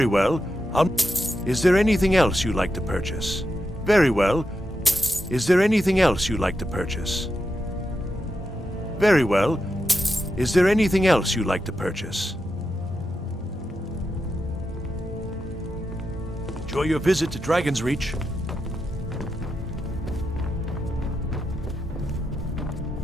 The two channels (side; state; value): both; normal; correlation 0.87